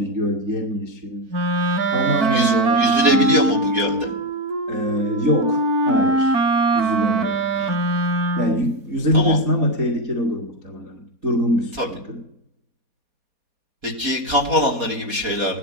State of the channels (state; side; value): late; left; 4.2 ms